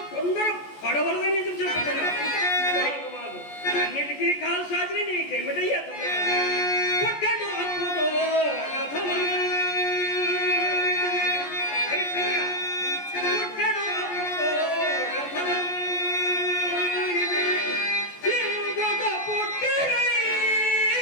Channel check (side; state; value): right; late; 14 ms